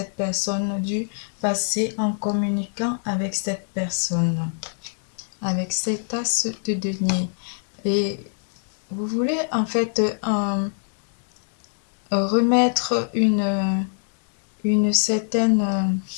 personne du passé en communiquant avec cette personne, avec cet as de denier. Et vous voulez en fait remettre une certaine,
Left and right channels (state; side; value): silent; right; digital silence